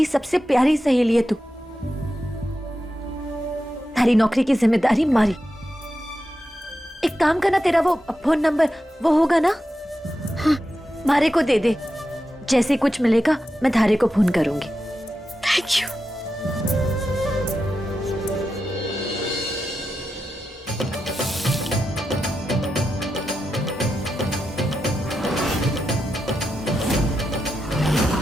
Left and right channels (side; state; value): both; normal; correlation 0.89